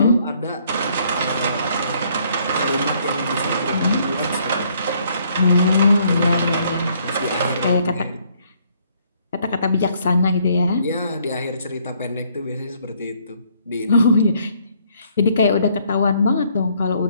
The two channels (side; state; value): both; inverted; correlation -0.66